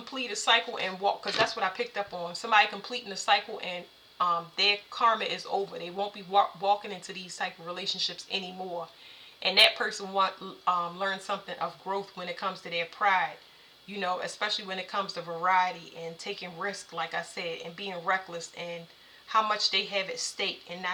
a cycle and walk, because that's what I picked up on. Somebody completing a cycle and their karma is over. They won't be walking into these type of relationships anymore. And that person learn something of growth when it comes to their pride. You know, especially when it comes to variety and taking risk, like I said, and being reckless, and how much they have at stake, and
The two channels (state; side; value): identical; both; correlation 1.00